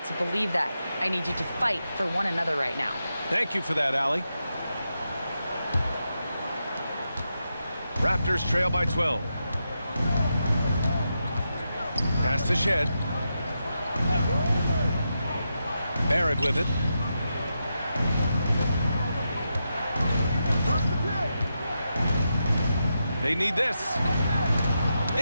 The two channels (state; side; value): inverted; both; correlation -0.86